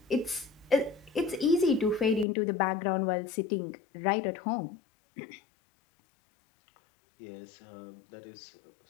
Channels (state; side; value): drops out; right; at 2.2 s